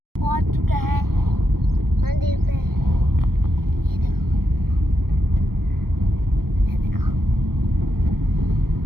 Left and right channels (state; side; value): late; left; 0.94 ms